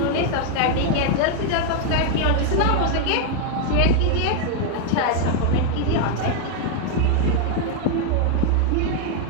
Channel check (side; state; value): both; different; correlation 0.00